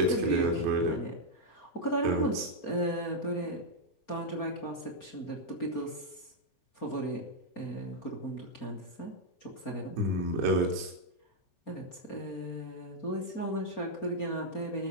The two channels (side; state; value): right; late; 4.3 ms